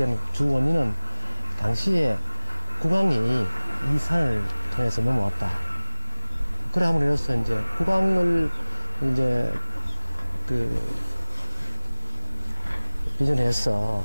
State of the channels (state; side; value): inverted; both; correlation -1.00